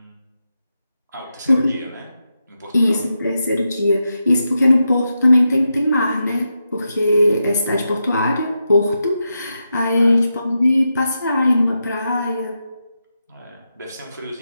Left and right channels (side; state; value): both; inverted; correlation -0.87